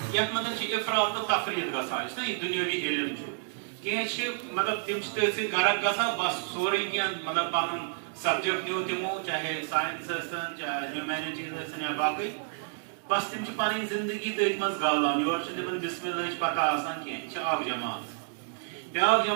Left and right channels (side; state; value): left; silent; digital silence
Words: یتھ مز افراط تو تفریط گژھان یہ دنیاوی علم کی مطلب تم تھی سی غرق گژھان بس سوری کی مطلب پن سبجیکٹ نیو تمو چاہے سائنس چاہے ہیومینٹیز یا باقی بس تم پن زندگی تھی مز گالان یور تم بسم اللہ پتہ آسان کی اکھ جماعت بیاکھ